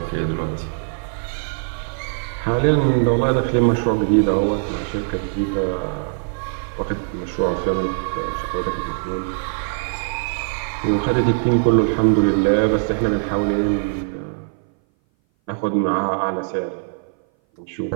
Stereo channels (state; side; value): silent; left; 58 dB below the other